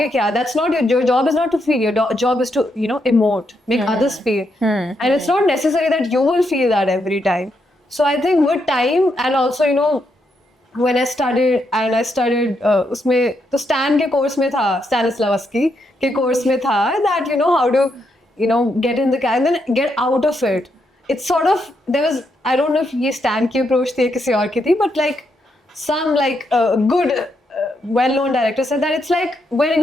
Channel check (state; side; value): normal; both; correlation 0.79